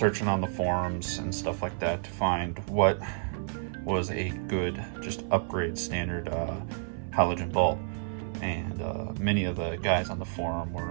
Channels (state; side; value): silent; left; 55 dB below the other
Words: on the forums and stuff like that to find what was a good, just upgrade standard halogen bulb. And many of the guys on the forum